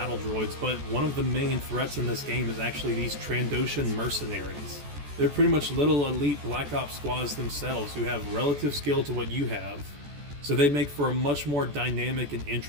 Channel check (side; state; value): left; late; 14 ms